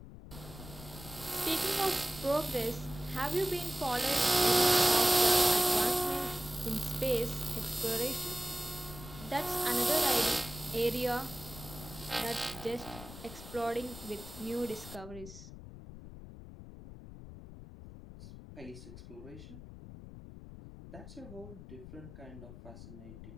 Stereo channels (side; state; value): left; noise; rumble, 14 dB below the sound